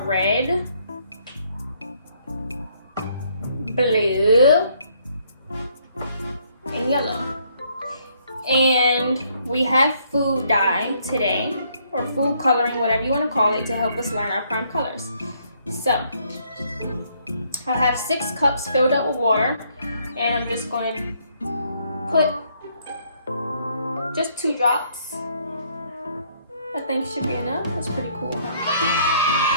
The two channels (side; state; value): both; inverted; correlation -0.68